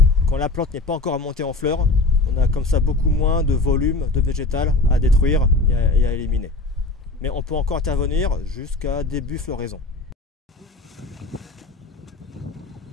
quand la plante n'est pas encore montée en fleurs. On a comme ça beaucoup moins de volume de végétal à détruire et à éliminer. Mais on peut encore intervenir jusqu'à début floraison.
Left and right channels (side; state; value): right; quieter; 3.2 dB